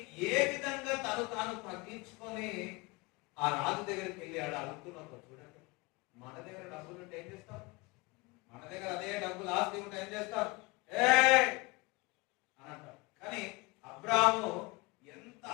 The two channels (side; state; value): right; quieter; 24.5 dB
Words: ఏ విధంగా తాను తగ్గించుకొని ఆ రాజు దగ్గరికి వెళ్ళి ఆడ అడుగుతున్నప్పుడు చూడండి. మన దగ్గర డబ్బులు ఉంటే ఏం చేస్తాం? మన దగ్గర అదే డబ్బులు ఆస్తి ఉంటే ఏం చేస్తాం? అని అంటాం. కానీ అబ్రాహాము ఎంత